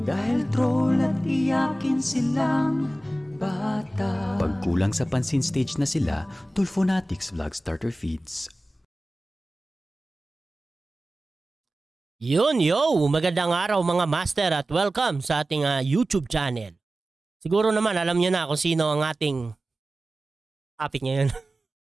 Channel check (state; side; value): normal; both; correlation 0.96